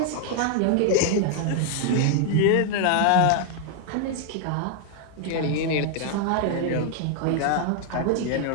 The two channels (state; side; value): different; both; correlation 0.00